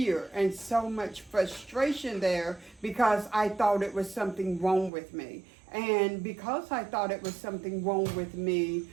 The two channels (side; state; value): left; drops out; at 4.9 s